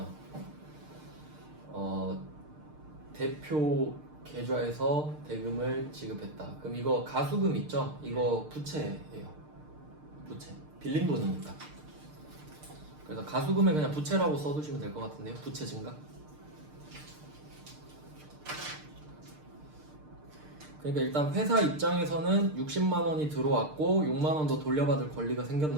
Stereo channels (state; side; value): late; left; 6.6 ms